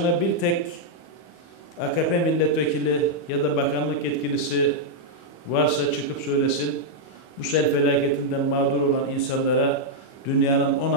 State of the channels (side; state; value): right; late; 24 ms